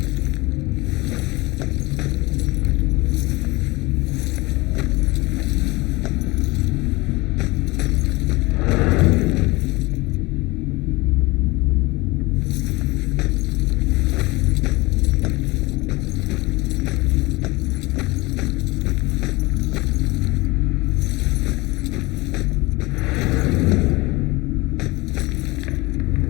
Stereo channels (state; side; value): quieter; right; 22.6 dB